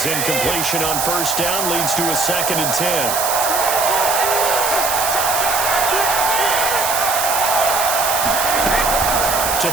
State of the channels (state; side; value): noise; right; hiss, 1 dB below the sound